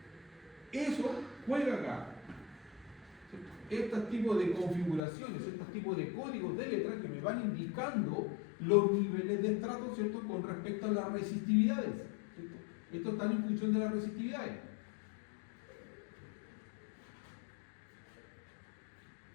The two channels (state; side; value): drops out; right; at 5.0 s